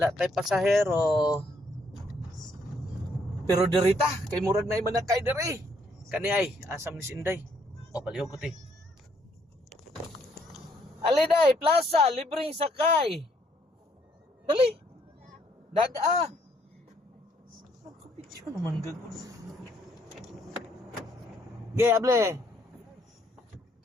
tay pasahero. Pero dirita, kay murag na iman na kay diri. Kani ay, asam ni Sinday. O, palihog ko ti. Aliday, plaza, libreng sakay. Dali. Daga. Kapityo naman gagawin. Okay, able.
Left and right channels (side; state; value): both; normal; correlation 0.69